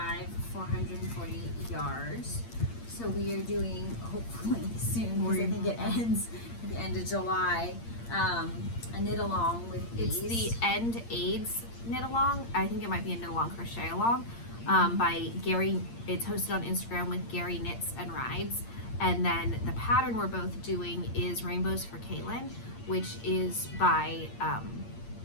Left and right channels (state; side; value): late; right; 8.7 ms